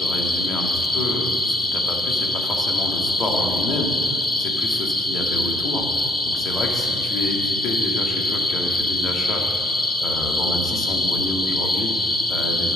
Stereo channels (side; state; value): both; normal; correlation 0.64